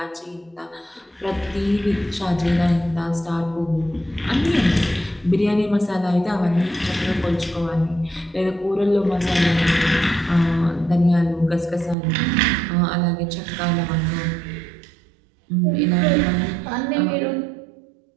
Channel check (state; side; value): drops out; left; at 12.0 s